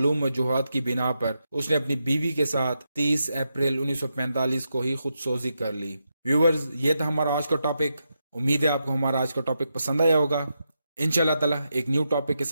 वजूहात की बिना पर उसने अपनी बीवी के साथ 30 अप्रैल 1945 को ही खुदसोजी कर ली। व्यूअर्स, ये था हमारा आज का टॉपिक। उम्मीद है आपको हमारा आज का टॉपिक पसंद आया होगा। इंशाल्लाह ताला एक न्यू टॉपिक के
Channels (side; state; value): both; inverted; correlation -0.85